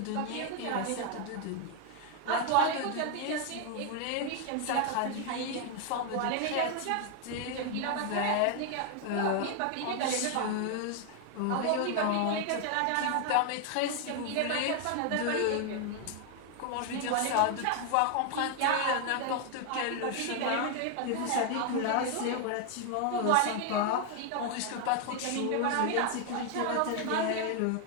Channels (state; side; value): different; both; correlation 0.00